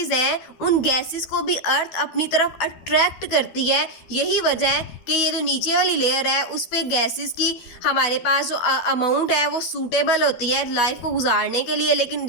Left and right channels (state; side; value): late; right; 12 ms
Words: हैं उन गैसेस को भी अर्थ अपनी तरफ अट्रैक्ट करती है। यही वजह है कि ये जो नीचे वाली लेयर है उस पे गैसेस की हमारे पास जो अमाउंट है वो सूटेबल होती है लाइफ को गुजारने के लिए। लेकिन